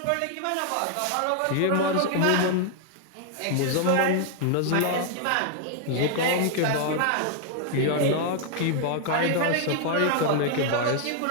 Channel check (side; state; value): both; different; correlation 0.00